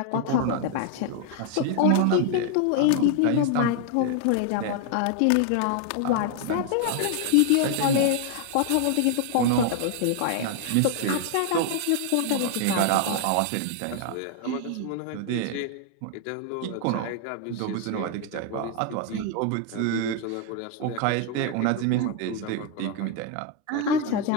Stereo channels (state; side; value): different; both; correlation 0.00